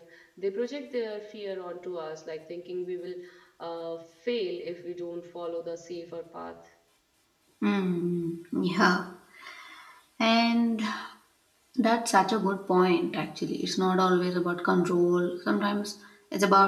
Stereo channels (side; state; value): both; identical; correlation 1.00